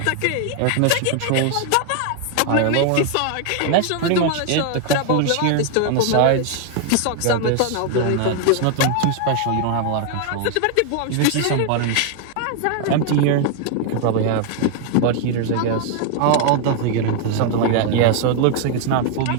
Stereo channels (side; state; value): both; different; correlation 0.00